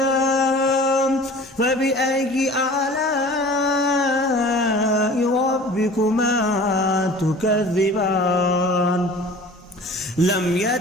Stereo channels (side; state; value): both; normal; correlation 0.44